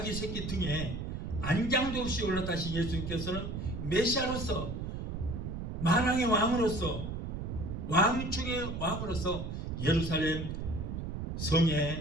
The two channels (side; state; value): right; noise; rumble, 5 dB below the sound